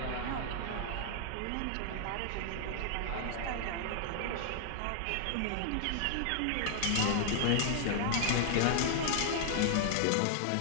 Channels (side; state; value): both; different; correlation 0.00